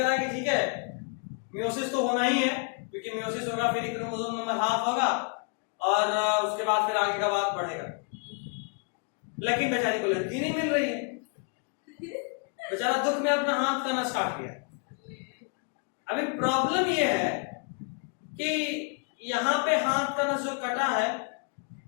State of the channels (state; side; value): quieter; right; 38.5 dB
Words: कि ठीक है मियोसिस तो होना ही है, क्योंकि मियोसिस होगा फिर क्रोमोसोम नंबर हाफ होगा और उसके बाद फिर आगे का बात बढ़ेगा। लेकिन बेचारी को लड़की नहीं मिल रही है, बेचारा दुख में अपना हाथ करना स्टार्ट किया। अभी प्रॉब्लम ये है कि यहाँ पे हाथ करना जो कटा है